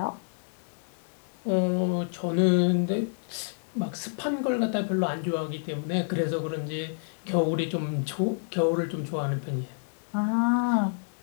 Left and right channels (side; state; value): right; silent; digital silence